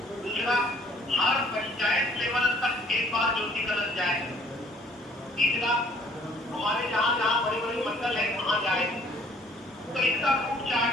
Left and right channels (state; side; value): normal; both; correlation 0.59